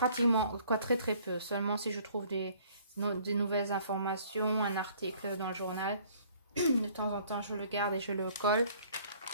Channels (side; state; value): both; inverted; correlation -0.57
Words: quoi, très très peu. Seulement si je trouve des nouvelles informations, un article dans le journal. De temps en temps, je le garde et je le colle.